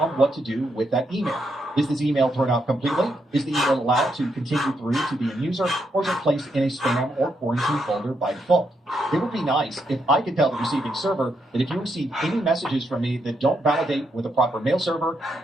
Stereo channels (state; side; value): normal; both; correlation 0.79